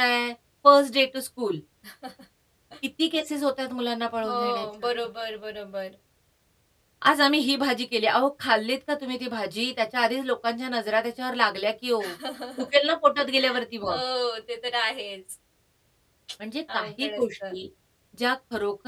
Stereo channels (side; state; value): both; identical; correlation 1.00